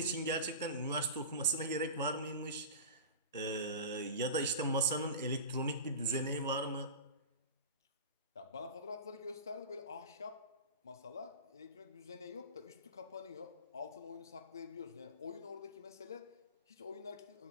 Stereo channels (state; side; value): inverted; both; correlation -0.31